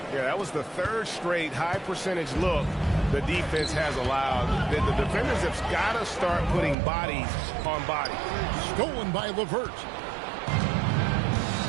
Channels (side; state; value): left; drops out; at 6.8 s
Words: Yeah, that was the third straight high percentage look the defense has allowed. The defenders have got to start putting bodies on bodies. Stolen by LeVert.